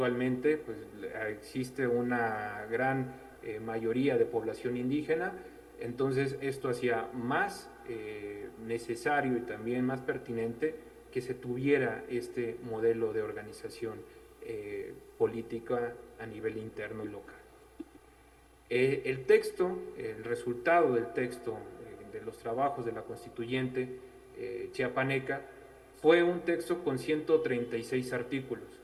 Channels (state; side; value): identical; both; correlation 1.00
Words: pues, existe una gran mayoría de población indígena, entonces esto hacía más necesario y también más pertinente que se tuviera este modelo de organización política a nivel interno y local. El texto, el resultado del texto de los trabajos de la constituyente chiapaneca fue un texto con 136 artículos,